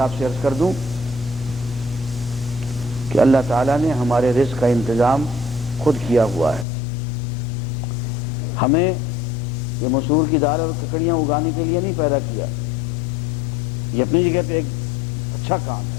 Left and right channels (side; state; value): right; drops out; at 6.7 s